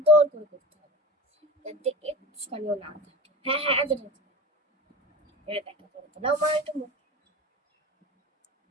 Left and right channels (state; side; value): normal; both; correlation 0.32